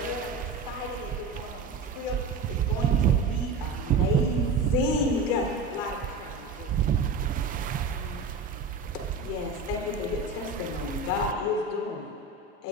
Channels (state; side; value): quieter; left; 3.5 dB